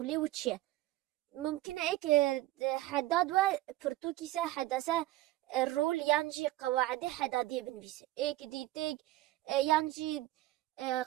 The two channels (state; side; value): quieter; left; 16.7 dB